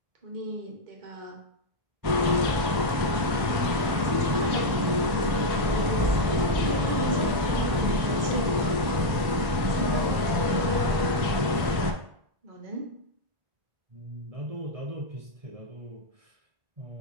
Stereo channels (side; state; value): left; late; 1.1 ms